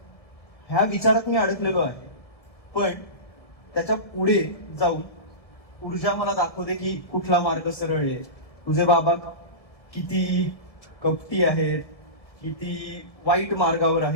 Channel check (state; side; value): late; right; 1.4 ms